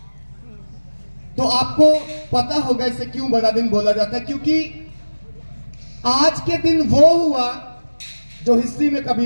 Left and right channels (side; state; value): both; inverted; correlation -1.00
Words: तो आपको पता होगा इसे क्यों बड़ा दिन बोला जाता है। क्योंकि आज के दिन वो हुआ जो हिस्ट्री में